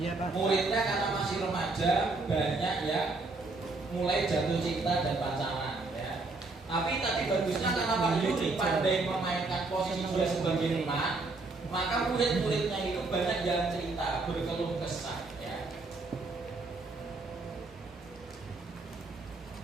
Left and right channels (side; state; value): left; quieter; 3.5 dB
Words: Pak. Muridnya karena masih remaja banyak ya mulai jatuh cinta dan pacaran ya. Tapi tadi bagusnya karena Pak Yuri pandai memainkan posisi dia sebagai emak, maka murid-muridnya itu banyak yang cerita berkeluh kesah ya.